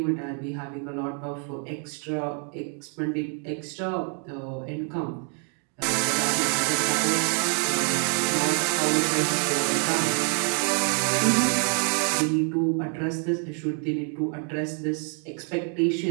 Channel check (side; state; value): left; quieter; 38.1 dB